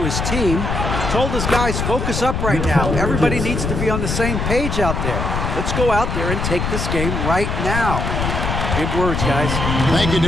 team. Told his guys, focus up right now. Everybody needs to be on the same page out there. Let's go out there and take this game right now. Big words, guys. Thank you,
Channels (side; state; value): left; noise; rumble, 2 dB below the sound